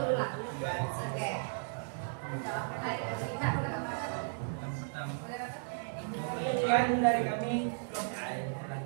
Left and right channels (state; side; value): silent; left; digital silence